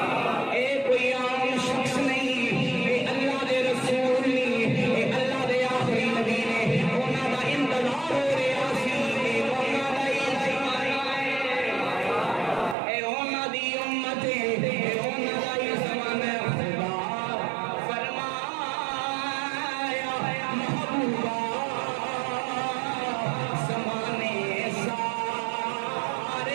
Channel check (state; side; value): drops out; left; at 12.8 s